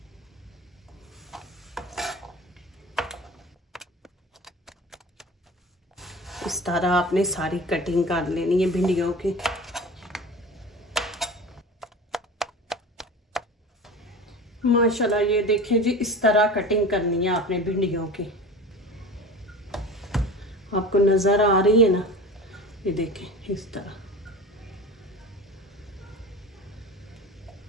इस तरह आपने सारी कटिंग कर लेनी है भिंडियों की। माशाल्लाह ये देखें जी, इस तरह कटिंग करनी है आपने भिंडियों की। आपको नज़र आ रही है ना? ये देखें इस तरह।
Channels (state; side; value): normal; both; correlation 0.34